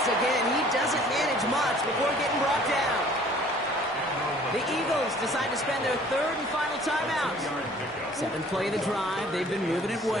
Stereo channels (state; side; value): normal; both; correlation 0.53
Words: again, he doesn't manage much before getting brought down. The Eagles decide to spend their 3rd and final timeout. 7th play of the drive. They've been moving it